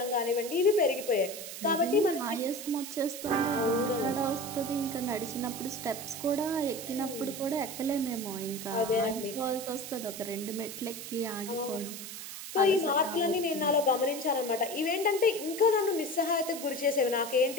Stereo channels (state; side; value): noise; right; hiss, 10 dB below the sound